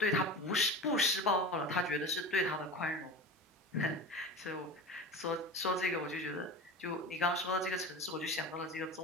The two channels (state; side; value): normal; both; correlation 0.31